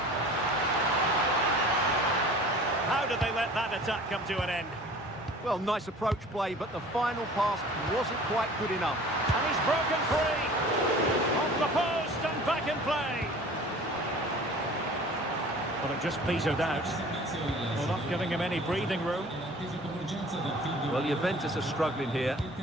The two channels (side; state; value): both; normal; correlation 0.45